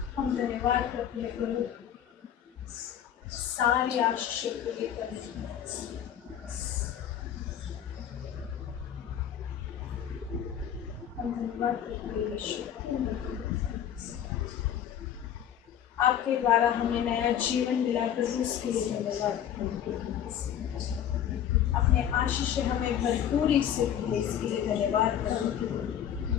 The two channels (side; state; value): right; quieter; 9.8 dB